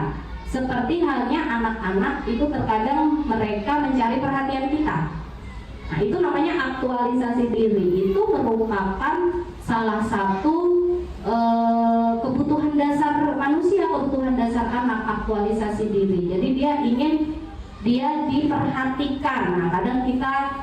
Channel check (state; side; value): identical; both; correlation 1.00